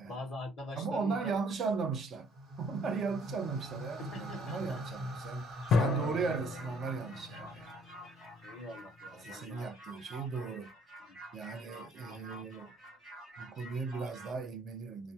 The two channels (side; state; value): both; normal; correlation 0.62